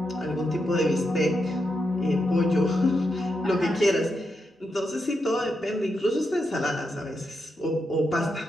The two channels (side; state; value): both; normal; correlation 0.84